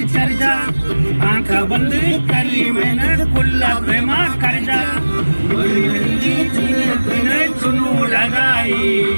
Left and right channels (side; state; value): both; inverted; correlation -1.00